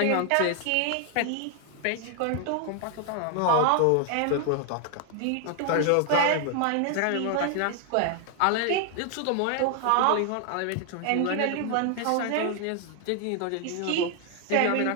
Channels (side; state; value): both; different; correlation 0.00